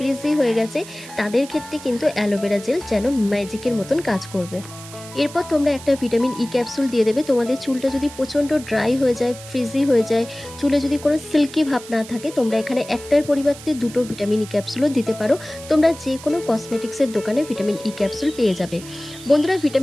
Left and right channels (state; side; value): noise; right; hiss, 16 dB below the sound